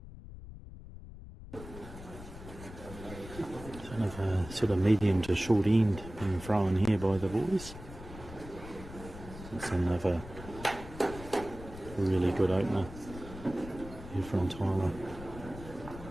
Sort of medium to short end being thrown here by the boys. It's another really good opener here from Tyler.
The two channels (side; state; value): left; noise; rumble, 14 dB below the sound